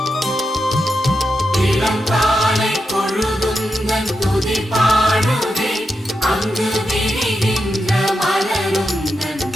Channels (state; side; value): normal; both; correlation 0.87